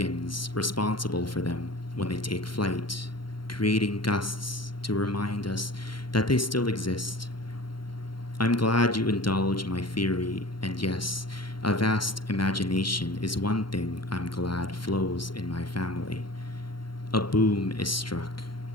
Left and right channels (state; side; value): late; right; 0.73 ms